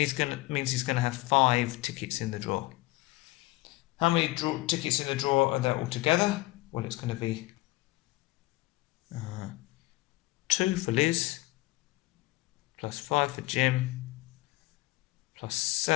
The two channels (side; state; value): right; quieter; 20.0 dB